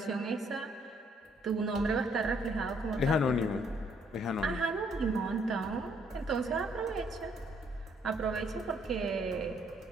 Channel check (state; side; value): normal; both; correlation 0.67